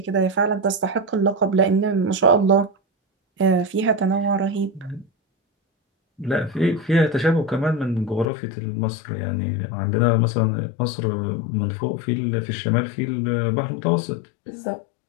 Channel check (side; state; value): right; drops out; at 8.2 s